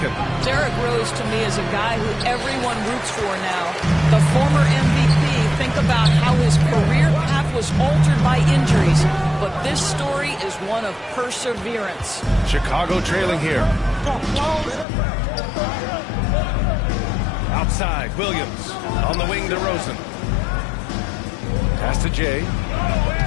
Derrick Rose, to me, is a guy who everyone roots for now. The former MVP, think about how his career path was altered by injuries. But this story is one of perseverance. Chicago trailing here. Outside, Williams. On the wing, DeRozan. Pass to Jay.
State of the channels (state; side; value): drops out; right; at 14.9 s